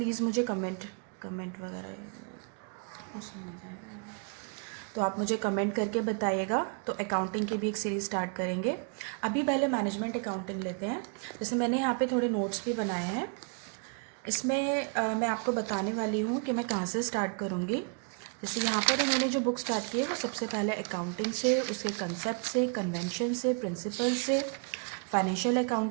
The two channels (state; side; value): quieter; left; 40.0 dB